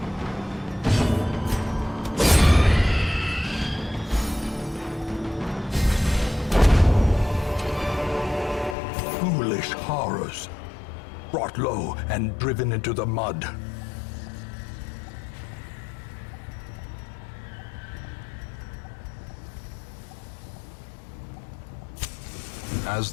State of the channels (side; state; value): right; drops out; at 8.8 s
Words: Foolish horrors. Brought low and driven into the mud. As